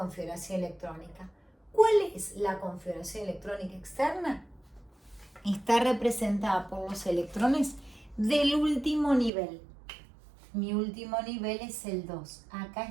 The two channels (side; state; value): left; drops out; at 9.3 s